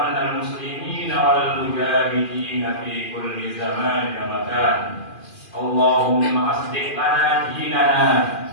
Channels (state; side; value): late; right; 2.4 ms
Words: al muslimin wal mujahidin fi kulli zaman wa makan. Allahumma aslih lana dinana